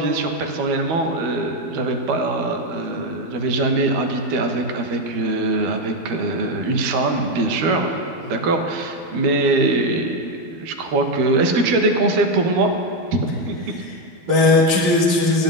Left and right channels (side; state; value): left; late; 12 ms